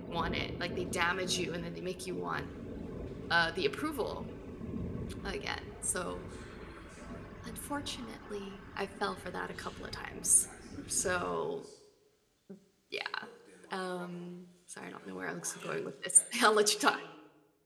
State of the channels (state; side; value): identical; both; correlation 1.00